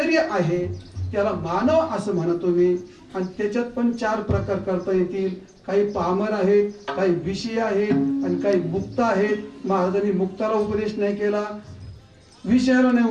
आहे त्याला मानव असं म्हणतो मी. आणि त्याच्यात पण 4 प्रकार करता येतील. काही पामर आहेत, काही विषय आहेत आणि काही मुक्त आहेत. महाराजांनी मुक्ताला उपदेश नाही केला, विषयाला नाही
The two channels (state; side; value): identical; both; correlation 1.00